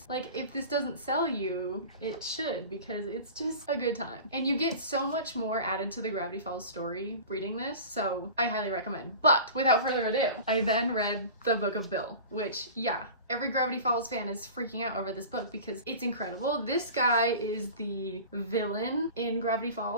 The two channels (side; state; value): both; inverted; correlation -0.36